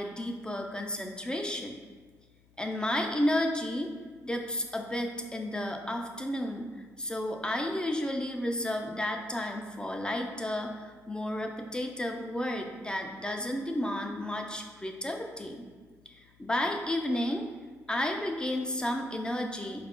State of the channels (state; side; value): noise; left; hum, 29 dB below the sound